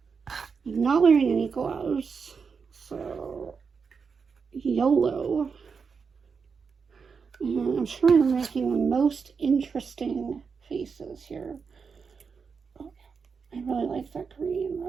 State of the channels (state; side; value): quieter; left; 5.6 dB